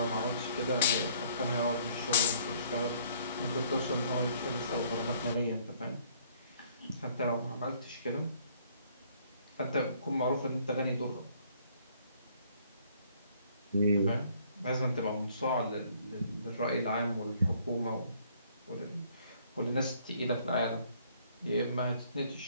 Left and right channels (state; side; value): inverted; both; correlation -0.62